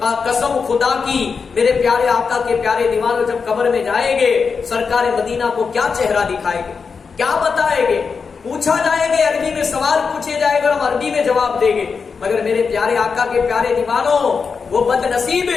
قسم خدا کی، میرے پیارے آقا کے پیارے دیوانوں، جب قبر میں جائیں گے، سرکار مدینہ کو کیا چہرہ دکھائے گے، کیا بتائیں گے؟ پوچھا جائے گے، عربی میں سوال پوچھے جائے گا، ہم عربی میں جواب دیں گے. مگر میرے پیارے آقا کے پیارے دیوانوں، وہ بد نصیب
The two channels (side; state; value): right; quieter; 5.4 dB